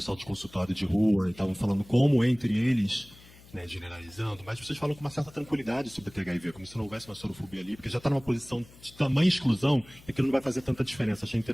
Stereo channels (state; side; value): noise; left; hum, 23 dB below the sound